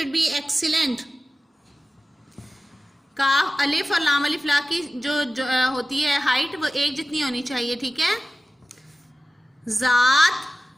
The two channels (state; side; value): normal; both; correlation 0.95